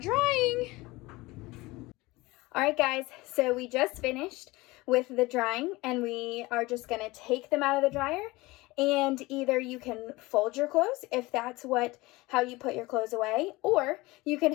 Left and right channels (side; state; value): right; quieter; 21.4 dB